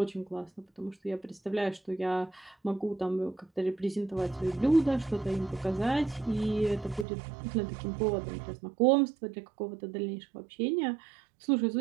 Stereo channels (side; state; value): left; drops out; at 7.1 s